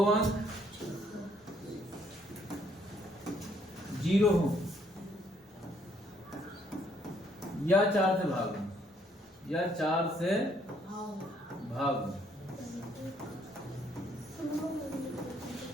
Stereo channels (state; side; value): normal; both; correlation 0.67